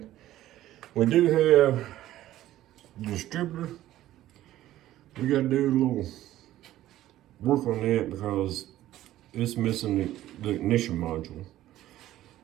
We do have the distributor. We gotta do a little work on that because it's missing the ignition module.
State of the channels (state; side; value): quieter; left; 14.1 dB